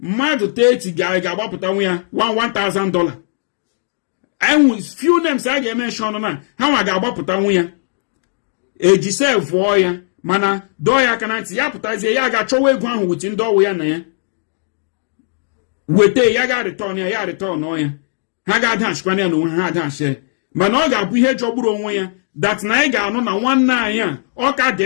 30 ga-agbapụtanwu ya $1,000 enwe few names a ga-emenshọn na ha nwa ga-agbapụtanwu ya eji sevụọ ya mana dọọ ya aka na ntị ya pụtazie ya ga-achọwa ego ahụ witi ndị ọwụ ya na ya weta ya ga-arịtọn ya rịtọn ya ha ga-adachikwana ya na onwe ha adachi mana ọ ga-abụ ihe jọgburu onwe ya that na anyị ga-anụ na nwanne anyị a ọ ka dị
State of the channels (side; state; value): right; silent; digital silence